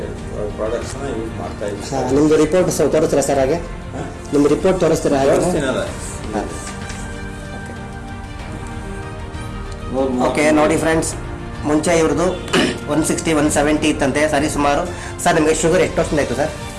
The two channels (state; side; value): identical; both; correlation 1.00